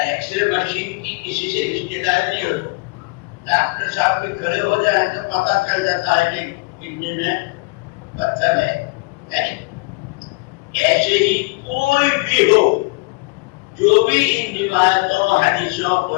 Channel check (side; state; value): right; quieter; 27.4 dB